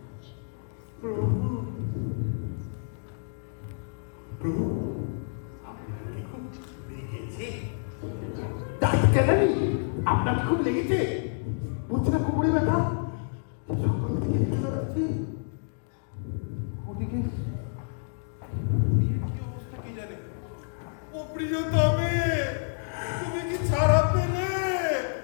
আপনার খুব লেগেছে? বুঝছে না কোমরে ব্যথা? সকাল থেকে ব্যথা লাগছে। ওদিকে বিয়ের কি অবস্থা কি জানে? ও প্রিয়তমে, তুমি কি ছাড়া পেলে?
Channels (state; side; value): silent; right; digital silence